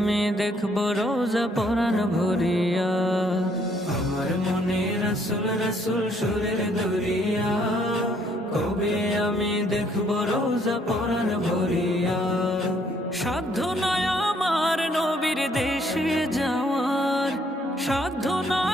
দেখব রোজা পরাণ ভরিয়া। আমার মনে রাসূল রাসূল সুরের দরিয়া, কবে আমি দেখব রোজা পরাণ ভরিয়া। সাধ্য নয় আমার নবীর দেশে যাওয়ার, সাধ্য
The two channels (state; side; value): normal; both; correlation 0.66